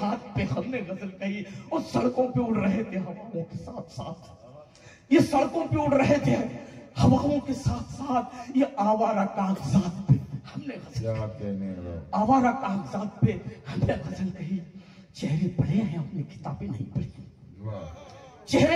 पे हमने गजल कही। और सड़कों पे उड़ रहे थे हवाओं के साथ साथ, ये सड़कों पे उड़ रहे थे हवाओं के साथ साथ, ये आवारा कागजात पे हमने गजल, क्या कहने, आवारा कागजात पे हमने गजल कही। चेहरे पढ़े हैं अपनी किताबें नहीं पढ़ी,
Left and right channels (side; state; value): both; identical; correlation 1.00